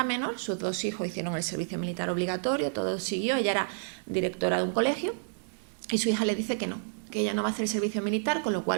menor, sus dos hijos hicieron el servicio militar obligatorio, todo siguió, ella era directora de un colegio, y su hija le dice que no, que ella no va a hacer el servicio militar, con lo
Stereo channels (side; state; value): left; silent; digital silence